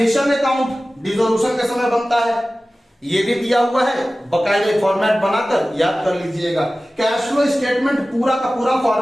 अकाउंट डिसोल्यूशन के समय बनता है, ये भी दिया हुआ है, बकायदे फॉर्मेट बनाकर याद कर लीजिएगा। कैश फ्लो स्टेटमेंट पूरा का पूरा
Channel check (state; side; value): normal; both; correlation 0.96